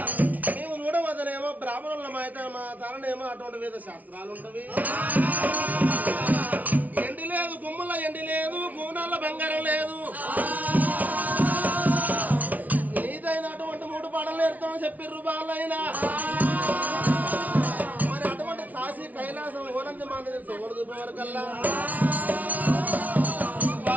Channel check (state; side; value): late; left; 0.075 ms